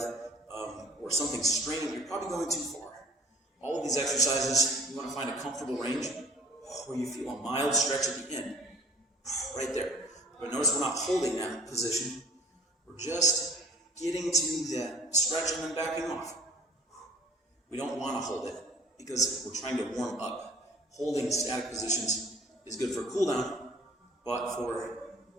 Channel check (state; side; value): normal; both; correlation 0.49